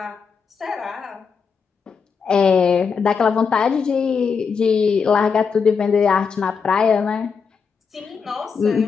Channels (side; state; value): right; quieter; 5.8 dB